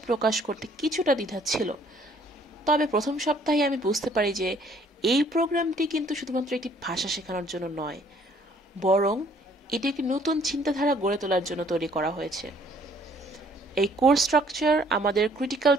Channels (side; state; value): both; normal; correlation 0.61